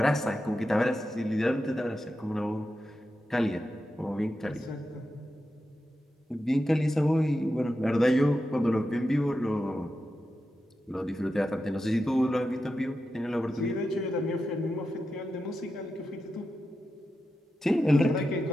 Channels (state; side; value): normal; both; correlation 0.90